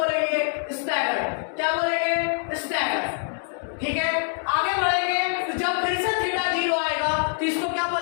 स्टैगर। क्या बोलेंगे? स्टैगर। ठीक है, आगे बढ़ेंगे तो जब फिर से थीटा 0 आएगा तो इसको क्या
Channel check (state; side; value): silent; right; 62 dB below the other